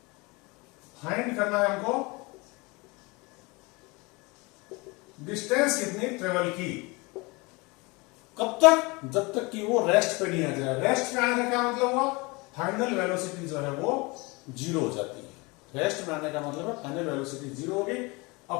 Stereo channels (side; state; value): right; quieter; 26.1 dB